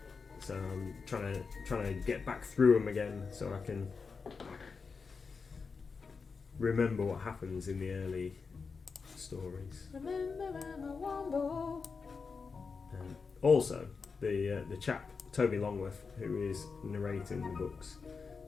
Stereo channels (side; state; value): right; quieter; 5.0 dB